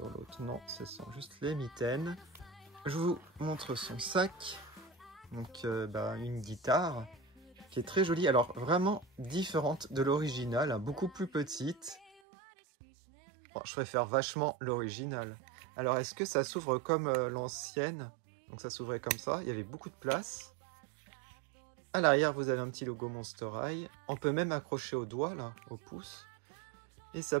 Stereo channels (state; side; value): drops out; left; at 12.2 s